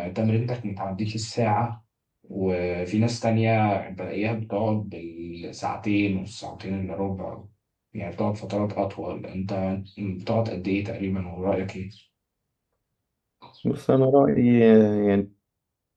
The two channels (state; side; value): identical; both; correlation 1.00